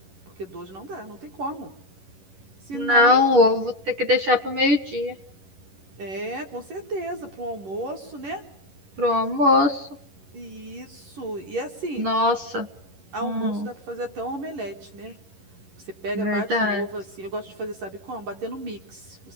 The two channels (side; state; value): left; late; 11 ms